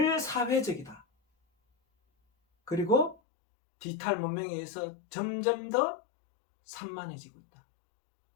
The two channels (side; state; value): right; drops out; at 3.2 s